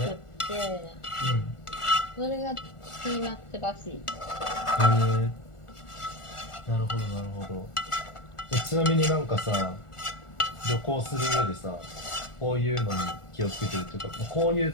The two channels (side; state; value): right; late; 1.4 ms